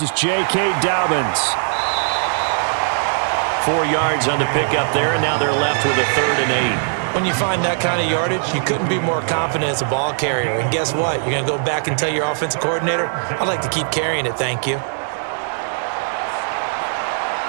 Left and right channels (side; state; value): left; silent; 66 dB below the other